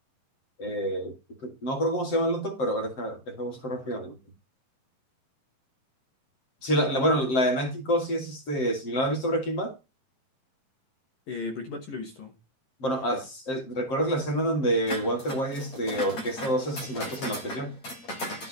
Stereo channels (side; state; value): right; late; 8.7 ms